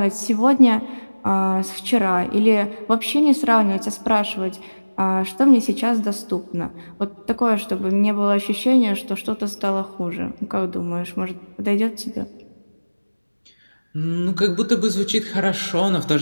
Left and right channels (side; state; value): both; inverted; correlation -1.00